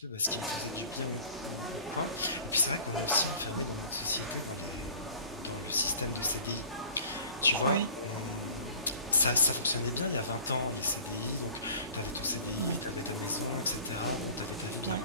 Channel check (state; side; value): inverted; both; correlation -0.46